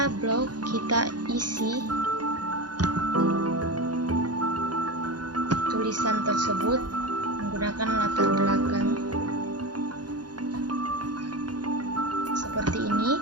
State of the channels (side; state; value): left; late; 0.69 ms